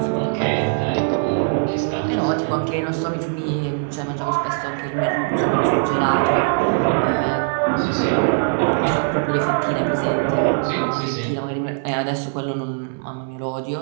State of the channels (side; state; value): left; silent; digital silence